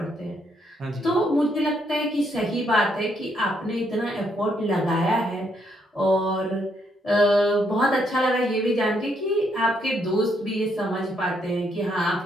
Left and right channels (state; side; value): normal; both; correlation 0.74